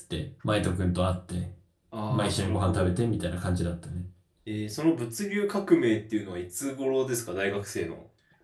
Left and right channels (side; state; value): both; identical; correlation 1.00